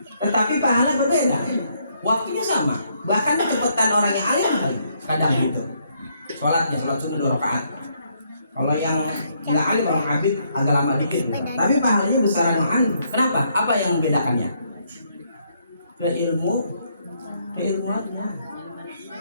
tetapi pahala berbeda, waktunya sama, bahkan kecepatan orang yang alim kadang gitu sholatnya, sholat sunnah 2 rakaat. Kalau yang nggak alim, orang abid agak lama dikit, tapi pahalanya besaran yang alim. Kenapa? Apa yang membedakannya? Keilmuannya.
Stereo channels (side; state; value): both; inverted; correlation -0.72